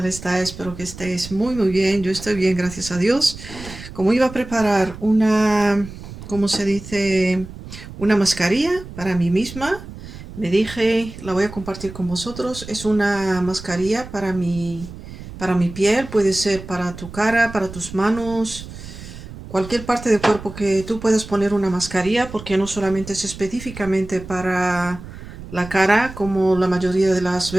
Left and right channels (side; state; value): right; noise; rumble, 13 dB below the sound